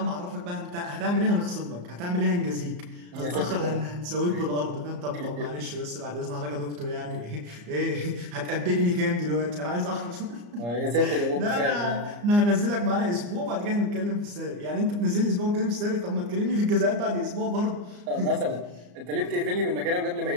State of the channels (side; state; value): left; late; 34 ms